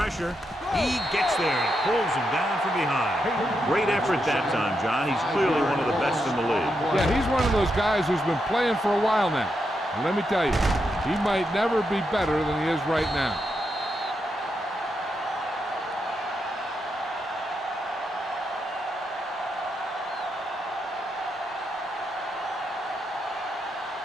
He gets there and pulls him down from behind. Great effort that time, John. He's clearly one of the best in the league. Yeah, he's one of those guys who's been playing for a while now. And let me tell you, he might never be better than he is right now.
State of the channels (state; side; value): normal; both; correlation 0.83